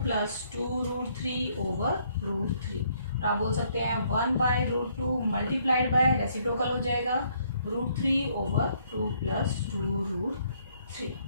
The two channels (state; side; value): inverted; both; correlation -0.68